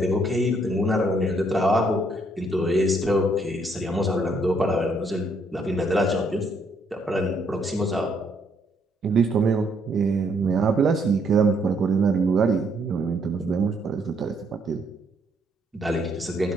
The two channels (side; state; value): both; normal; correlation 0.70